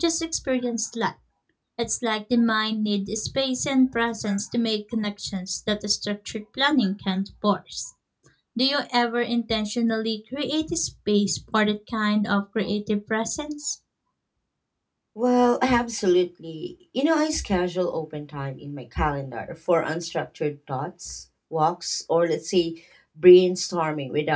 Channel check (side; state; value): both; identical; correlation 1.00